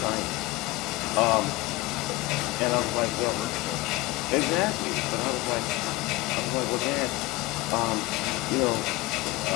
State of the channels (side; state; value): right; quieter; 21.2 dB